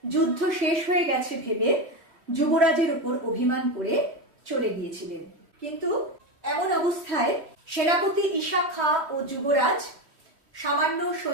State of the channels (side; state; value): left; late; 3.1 ms